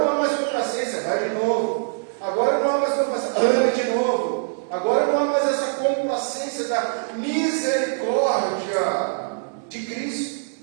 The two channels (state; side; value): silent; left; 63 dB below the other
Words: há mais complacência, vai de novo. Agora não há mais complacência, ame de novo. Agora não há mais essa complacência da misericórdia de Cristo,